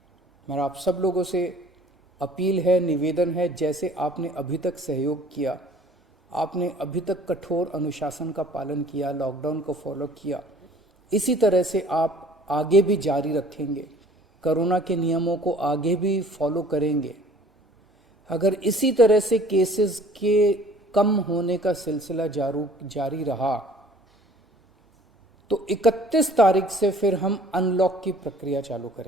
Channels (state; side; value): normal; both; correlation 0.52